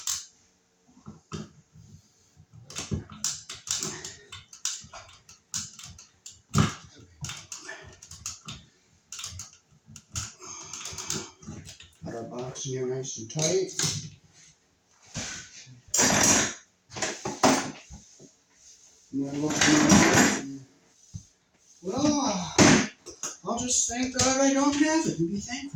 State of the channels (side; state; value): both; identical; correlation 1.00